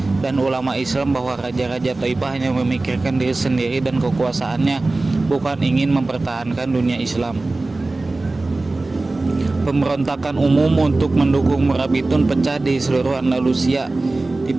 dan ulama Islam bahwa raja-raja Taifah hanya memikirkan diri sendiri dan kekuasaannya, bukan ingin mempertahankan dunia Islam. Pemberontakan umum untuk mendukung Murabitun pecah di seluruh Andalusia,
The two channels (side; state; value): left; quieter; 3.2 dB